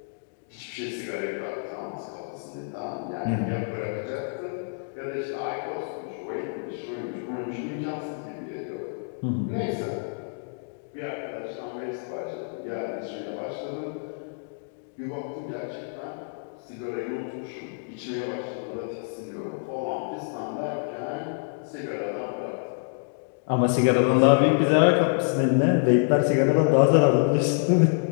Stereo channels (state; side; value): silent; right; digital silence